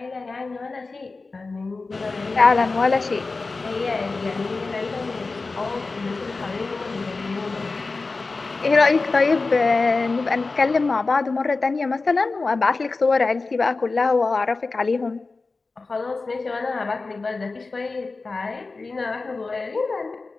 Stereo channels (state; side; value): quieter; right; 3.8 dB